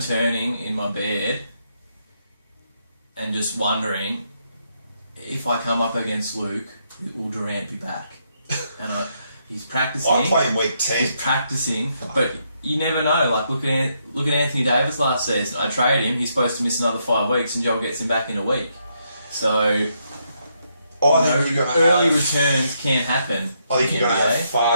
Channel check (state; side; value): inverted; both; correlation -0.77